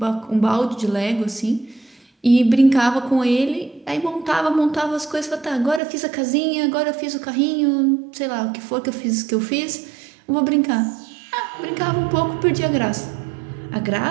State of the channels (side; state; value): left; drops out; at 5.8 s